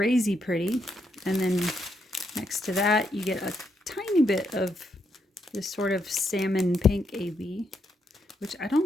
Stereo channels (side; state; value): both; normal; correlation 0.79